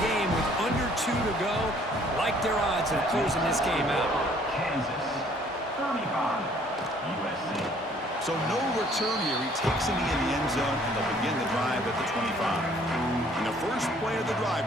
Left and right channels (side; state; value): both; normal; correlation 0.59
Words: game with under 2 to go. Like their odds of closing this game out. Kansas, 35, USC. So no return here. He takes it in the end zone, and they'll begin the drive at the 25. And the first play of the drive